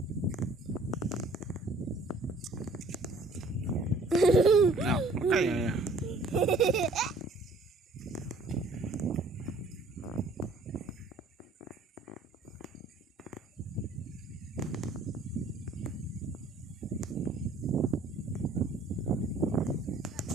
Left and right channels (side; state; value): left; quieter; 3.0 dB